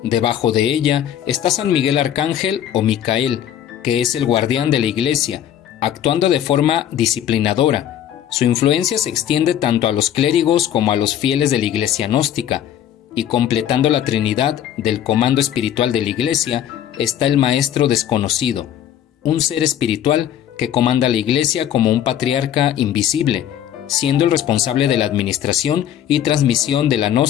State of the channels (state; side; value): quieter; right; 10.4 dB